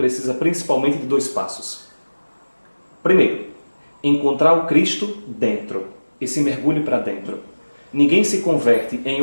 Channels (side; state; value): both; inverted; correlation -1.00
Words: principalmente de 2 passos. Primeiro, encontrar o Cristo dentro, esse mergulho para dentro. Ninguém se converte em